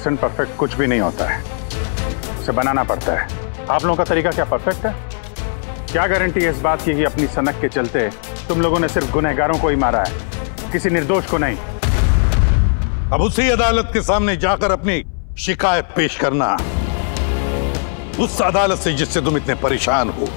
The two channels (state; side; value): silent; right; 64 dB below the other